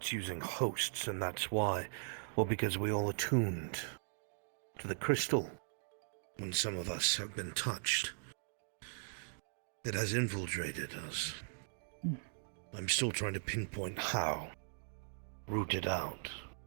using hosts, and that's why, or because we all attuned to the crystal. When some of us have been touched, it has infiltrated us. I'm still trying to pinpoint how. Root it out.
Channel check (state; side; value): silent; left; digital silence